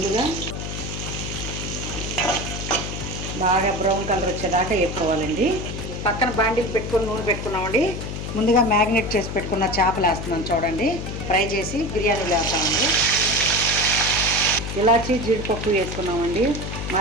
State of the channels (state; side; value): noise; left; hum, 6 dB below the sound